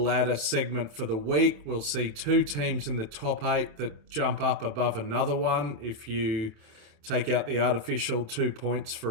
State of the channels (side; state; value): left; late; 27 ms